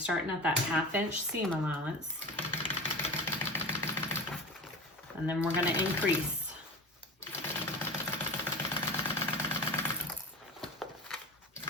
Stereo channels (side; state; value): both; normal; correlation 0.32